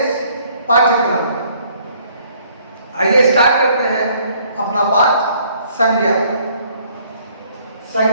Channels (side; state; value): both; inverted; correlation -0.62